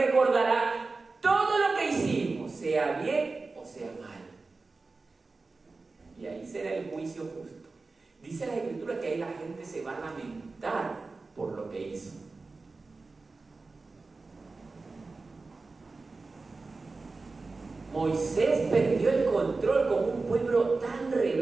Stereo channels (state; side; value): quieter; left; 3.8 dB